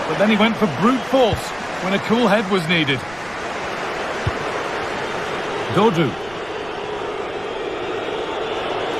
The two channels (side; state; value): right; noise; rumble, 21 dB below the sound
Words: but then he went for brute force when a cool head was needed. Dodu.